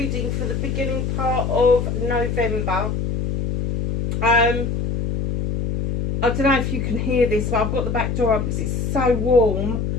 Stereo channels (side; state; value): left; noise; hum, 1 dB below the sound